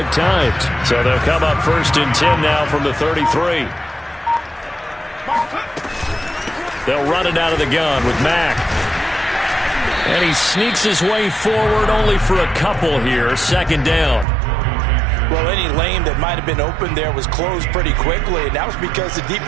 times. So they'll come up 1st and 10 now from the 33. They'll run it out of the gun with Mack. And he sneaks his way forward only for a couple here. 2nd down. Well, any lane that might have been open there was closed pretty quickly, and that was because the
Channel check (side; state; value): left; drops out; at 14.2 s